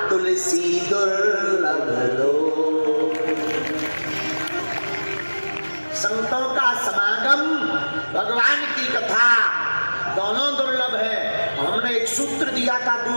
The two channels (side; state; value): both; inverted; correlation -1.00